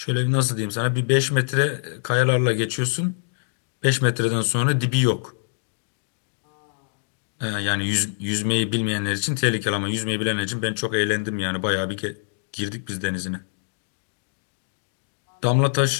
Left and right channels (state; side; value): silent; right; digital silence